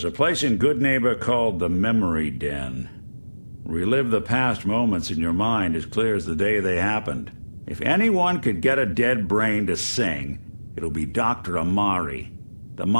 a place in Good Neighbor called the Memory Den. Relive the past moments in your mind as clear as the day they happened. If anyone could get a dead brain to sing, it'll be Dr. Amari, the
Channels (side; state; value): both; inverted; correlation -1.00